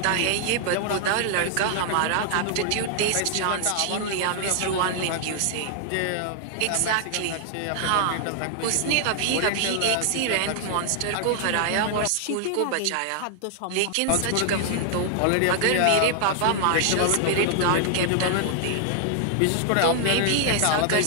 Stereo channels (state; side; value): different; both; correlation 0.00